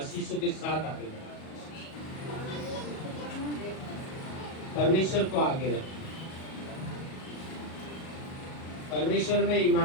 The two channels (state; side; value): late; right; 37 ms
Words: के साथ आगे बढ़ो। परमेश्वर को आगे रखो, परमेश्वर में